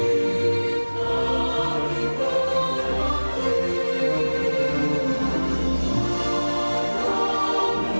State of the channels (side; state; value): both; inverted; correlation -1.00